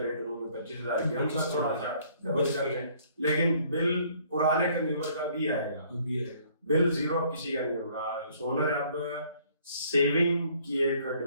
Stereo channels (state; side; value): inverted; both; correlation -0.61